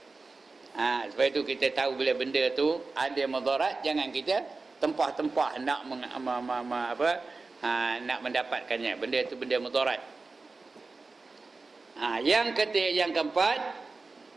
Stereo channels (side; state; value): left; quieter; 3.8 dB